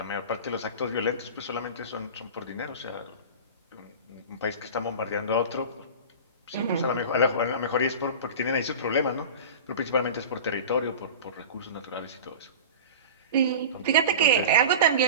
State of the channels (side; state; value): both; inverted; correlation -0.33